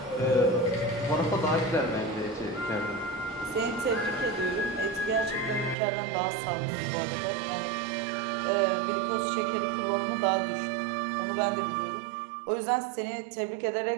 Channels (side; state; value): left; drops out; at 5.8 s